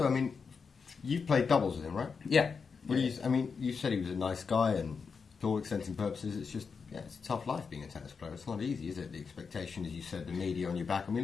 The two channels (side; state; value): right; quieter; 5.5 dB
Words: I mean, you've played doubles with him, right? Yeah. Well, you said he was a nice guy, and to all extents and purposes, it's just it's a tough life being a tennis player. It's not easy, is it? The expectation, as you said, the media on your back. I